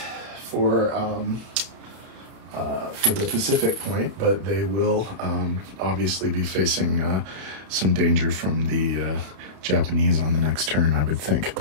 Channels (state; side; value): late; left; 31 ms